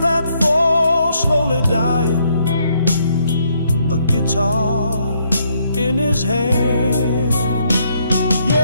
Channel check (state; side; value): inverted; both; correlation -0.73